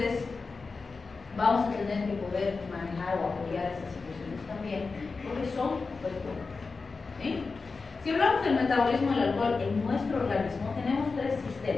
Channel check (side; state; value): right; quieter; 4.3 dB